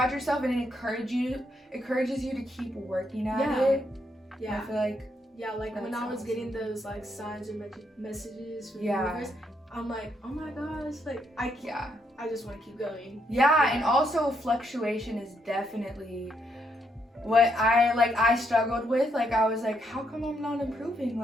yourself, and it encourages you to keep working at Yeah. it. I yeah, feel like yeah, like when that's I was awesome. getting those like signs or messages from Yeah. the universe, I'm like, oh my gosh, like I just want to keep going. yeah, and also fluctuation is definitely what I struggled with. Like I was like, how come I'm not improving?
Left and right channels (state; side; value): normal; both; correlation 0.76